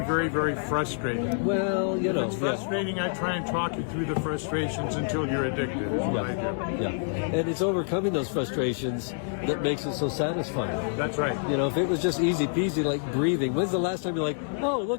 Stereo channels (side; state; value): right; silent; digital silence